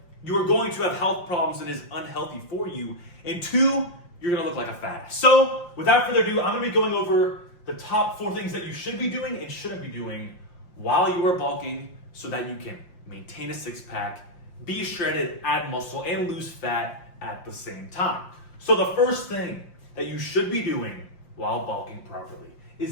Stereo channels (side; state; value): right; late; 5.7 ms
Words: you are going to have health problems and is unhealthy for you. And two, you're gonna look like a fat ass. So without further ado, I'm gonna be going over the top 4 things that you should be doing and shouldn't be doing while you are bulking so that you can maintain a six pack, be shredded, add muscle, and lose fat at the same time. So the first thing that you should be doing while bulking properly